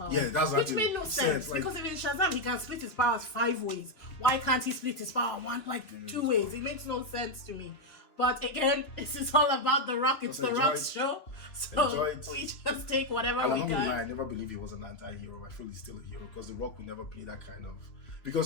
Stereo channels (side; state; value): right; late; 3.0 ms